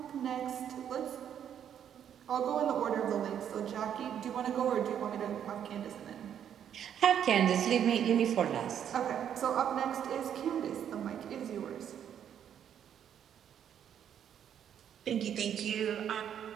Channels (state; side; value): quieter; left; 9.2 dB